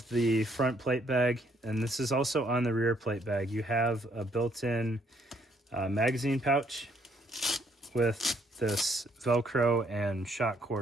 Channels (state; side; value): normal; both; correlation 0.68